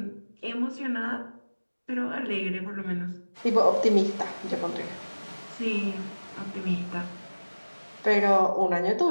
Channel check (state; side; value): inverted; both; correlation -1.00